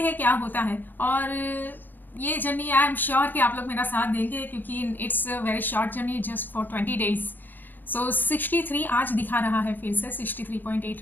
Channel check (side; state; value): right; late; 0.090 ms